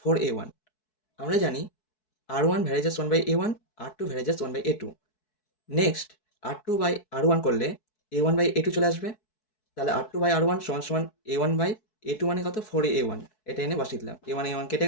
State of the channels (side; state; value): right; late; 4.6 ms